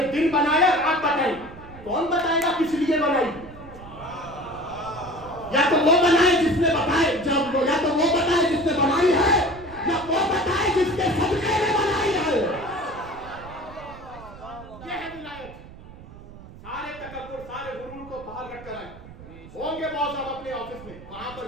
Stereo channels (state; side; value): noise; right; rumble, 17 dB below the sound